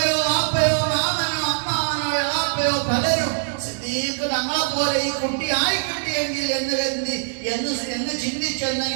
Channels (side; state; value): left; silent; digital silence